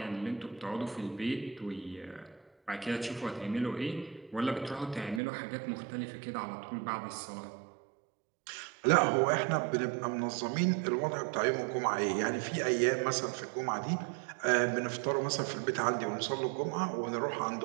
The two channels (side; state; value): left; drops out; at 5.2 s